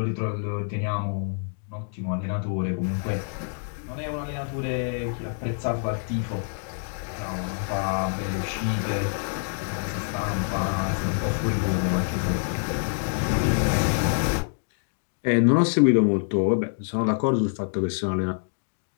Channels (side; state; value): right; silent; digital silence